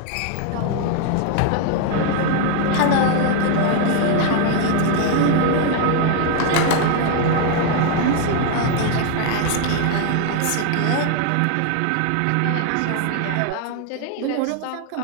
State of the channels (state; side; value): different; both; correlation 0.01